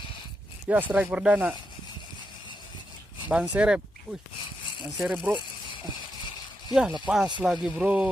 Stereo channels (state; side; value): normal; both; correlation 0.85